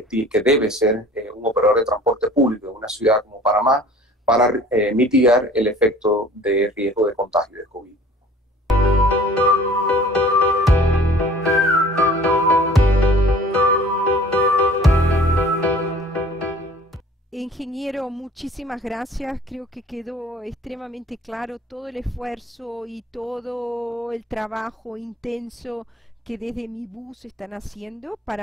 debe ser un operador de transporte público en una ciudad como Panamá para mitigar el efecto de riesgo de contagio de COVID. Ingeniero, muchísimas gracias. Creo que quedó extremadamente claro todo el esfuerzo y todo el trabajo intenso que desde Mi Bus están haciendo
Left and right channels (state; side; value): normal; both; correlation 0.49